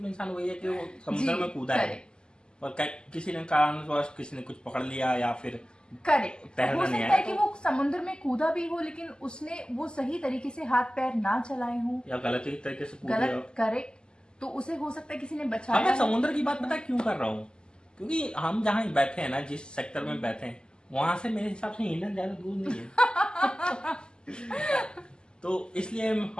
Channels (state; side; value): late; right; 0.047 ms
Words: इंसान वही है कि वो समुद्र में कूदा है, और किसी ने कारणवश किसी ने कुछ पकड़ लिया, या फिर करेक्ट, हो सकता है कि तो वो समुद्र में कूदा भी हो, लेकिन उसने वो सही तरीके से हाथ पैर ना चलाए हो, या गलत तरीके से कूद गया। गलत, करेक्ट, तो उसे हो सकता है किसी ने बचाया। मैं समुद्र की बात पता क्यों कर रहा हूँ? क्योंकि हम जहाँ बैठे हैं ना, जिस सेक्टर में बैठे हैं, वहां से मेरे हिसाब से इंडियन ज्यादा दूर नहीं है। तो इसलिए